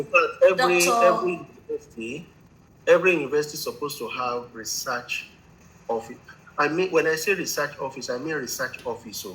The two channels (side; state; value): both; identical; correlation 1.00